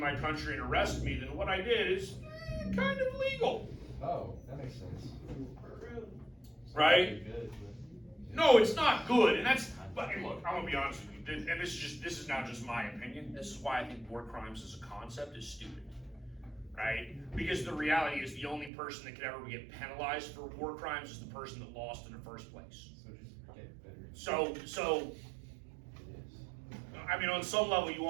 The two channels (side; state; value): left; drops out; at 18.7 s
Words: country and arrest me, then what I did is kind of legal. Oh, that makes sense. right? Good, No, it's not good, and that's. But hey, look, I'm gonna be honest with you, and this is now just my opinion. This is why I think war crimes as a concept is stupid, right? Because the reality is the only person that could ever get penalized for war crimes is the person that lost in the first place. so just get better. So, I mean, on some level, you